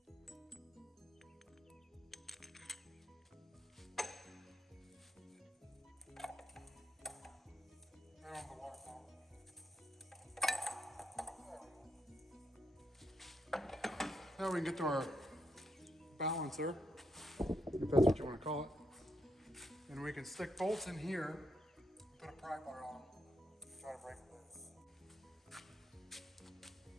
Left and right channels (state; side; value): normal; both; correlation 0.79